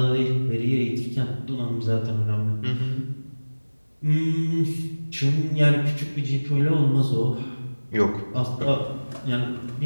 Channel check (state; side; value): inverted; both; correlation -1.00